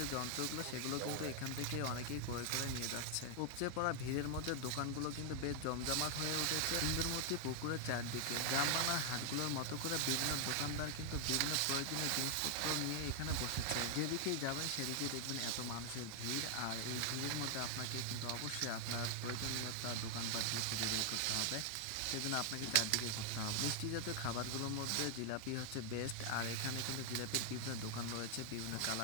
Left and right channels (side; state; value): both; different; correlation 0.00